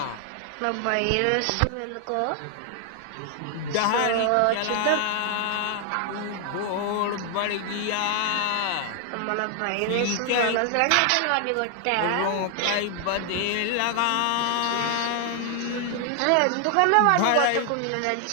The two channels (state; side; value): different; both; correlation 0.00